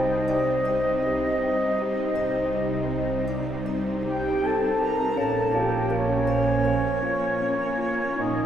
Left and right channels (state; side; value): normal; both; correlation 0.78